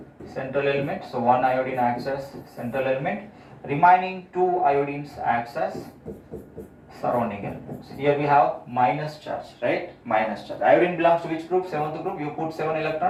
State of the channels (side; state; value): both; identical; correlation 1.00